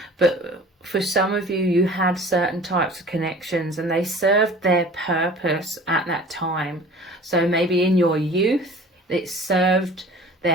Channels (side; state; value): both; normal; correlation 0.44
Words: But for some of you, you had certain types of connections and they served their purpose at that time. So maybe in your youth, it served